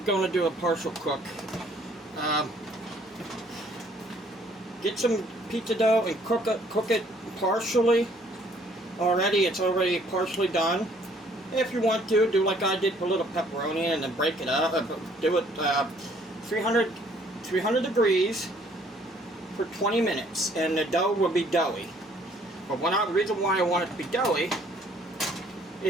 going to do a partial cook. Get some pizza dough and cook it partially. It's already partially done. If you want to, do like I did, put a little pepperoni and then break it up. Do it 300 degrees for 20 minutes, and the dough will be doughy. But the reason why I want it to be doughy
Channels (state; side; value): normal; both; correlation 0.61